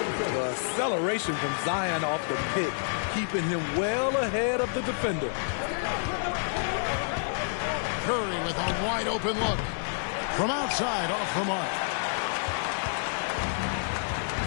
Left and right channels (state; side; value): silent; right; digital silence